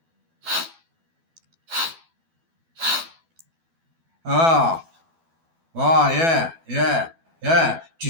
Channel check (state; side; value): late; left; 12 ms